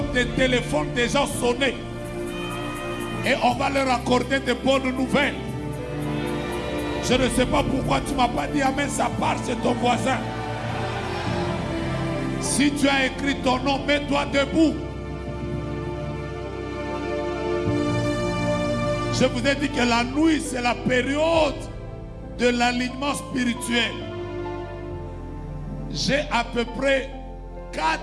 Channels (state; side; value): identical; both; correlation 1.00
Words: des téléphones des gens sonner. Et on va leur accorder de bonnes nouvelles. Je ne sais pas pourquoi tu ne m'as pas dit amen, ça part chez ton voisin. Si tu as écrit ton nom, mets-toi debout. Je vous ai dit que la nuit, c'est la période de l'alignement spirituel. J'ai à peu près